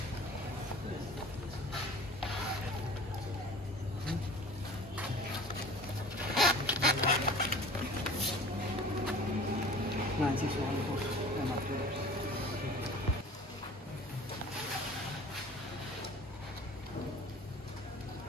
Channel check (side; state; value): both; normal; correlation 0.43